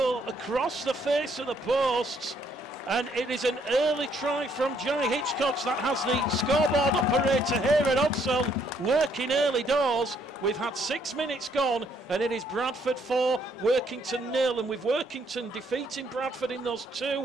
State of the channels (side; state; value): both; normal; correlation 0.69